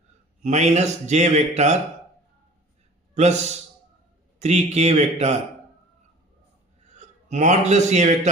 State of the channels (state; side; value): normal; both; correlation 0.45